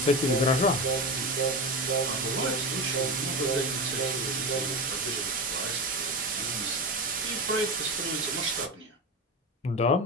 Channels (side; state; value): both; normal; correlation 0.21